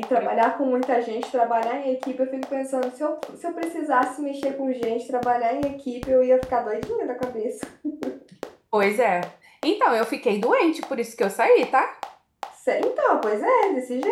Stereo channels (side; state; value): both; identical; correlation 1.00